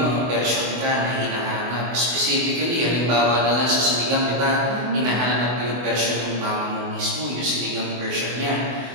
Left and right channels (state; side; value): late; left; 24 ms